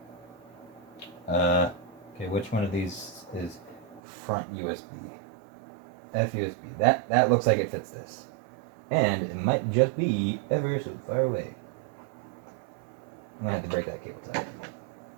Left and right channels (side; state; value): left; drops out; at 4.0 s